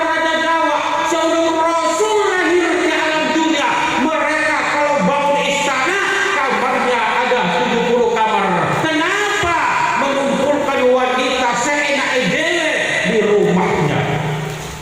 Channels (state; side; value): noise; right; rumble, 28 dB below the sound